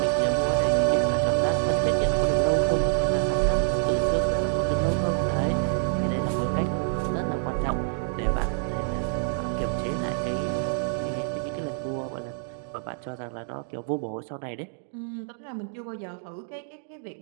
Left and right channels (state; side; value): silent; left; digital silence